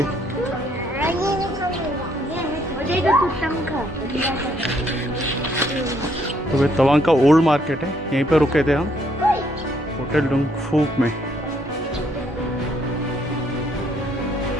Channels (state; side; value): normal; both; correlation 0.69